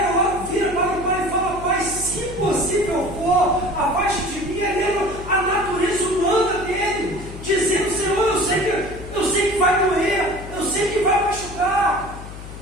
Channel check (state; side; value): noise; left; hum, 13 dB below the sound